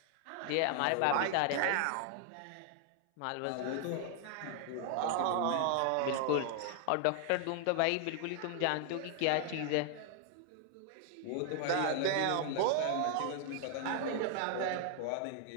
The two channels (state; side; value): different; both; correlation 0.00